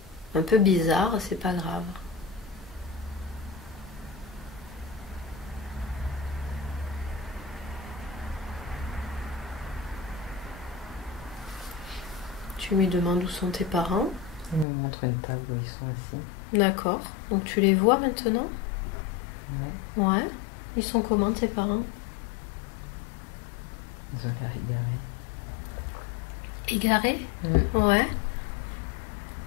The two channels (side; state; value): right; drops out; at 14.7 s